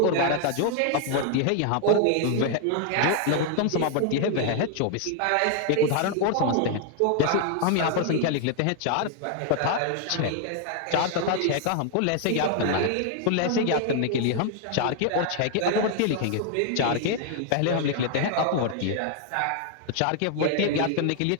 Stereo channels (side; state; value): both; different; correlation 0.00